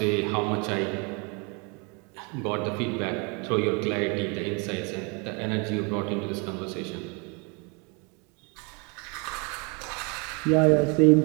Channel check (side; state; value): left; quieter; 32.0 dB